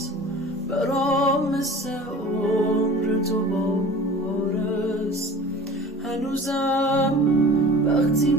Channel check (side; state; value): both; normal; correlation 0.41